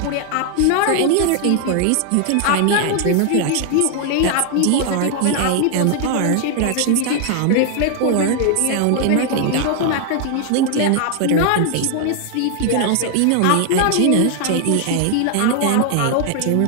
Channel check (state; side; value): different; both; correlation 0.00